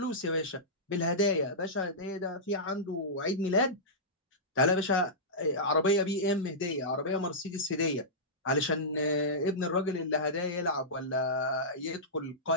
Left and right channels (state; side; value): normal; both; correlation -0.15